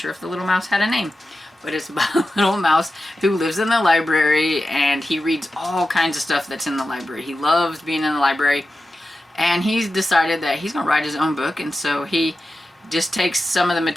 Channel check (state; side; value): normal; both; correlation 0.92